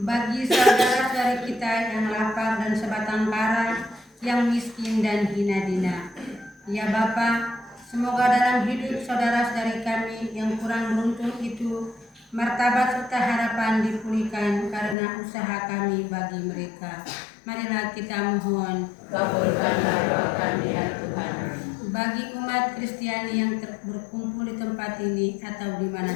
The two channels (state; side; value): drops out; right; at 15.0 s